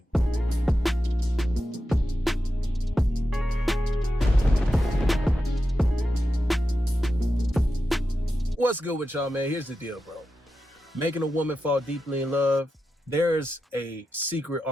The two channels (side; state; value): both; normal; correlation 0.90